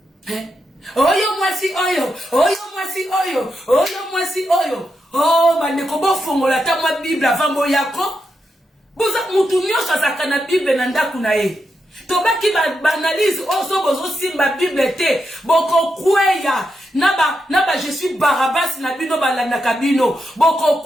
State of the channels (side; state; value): both; normal; correlation 0.85